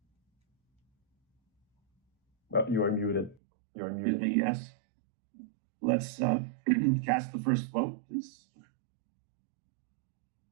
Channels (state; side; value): drops out; left; at 3.4 s